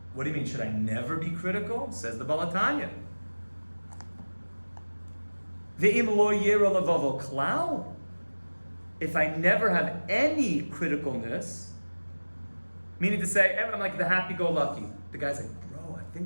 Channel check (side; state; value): both; inverted; correlation -1.00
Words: what do you mean? Should I never be critical? Says the Baal Tanya. Ve'im lo yira levavo klal. If I never have any criticalness, meaning to say, I'm like the happy-go-lucky. The guy's like, bro, I